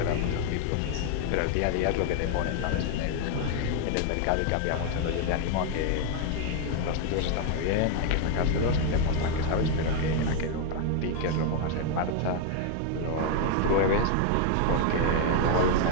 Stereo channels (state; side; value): different; both; correlation 0.00